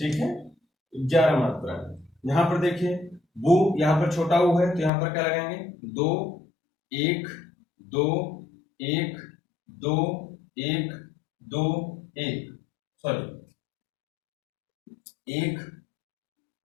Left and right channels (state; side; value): drops out; right; at 4.9 s